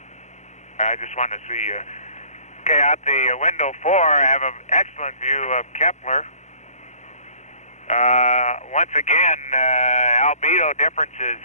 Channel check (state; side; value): late; right; 0.33 ms